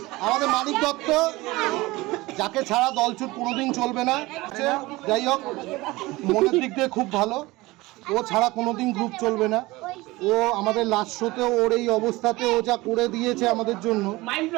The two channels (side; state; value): left; quieter; 20.7 dB